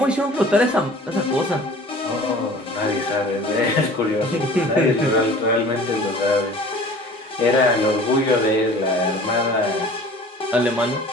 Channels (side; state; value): both; normal; correlation 0.45